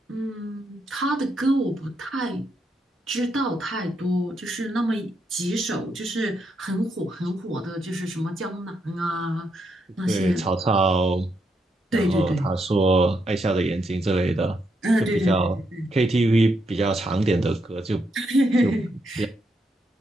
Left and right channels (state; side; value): normal; both; correlation 0.79